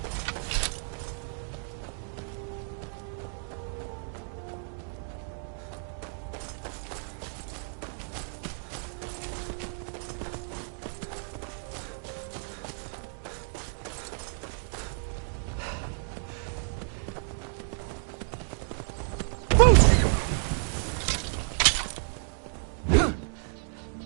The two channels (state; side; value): silent; left; 57 dB below the other